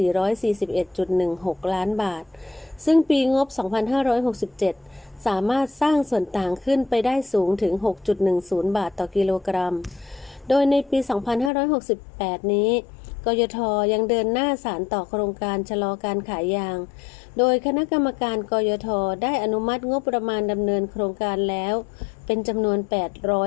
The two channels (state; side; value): drops out; right; at 11.5 s